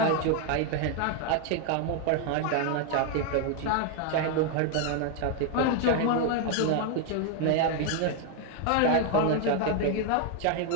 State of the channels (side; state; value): both; different; correlation 0.01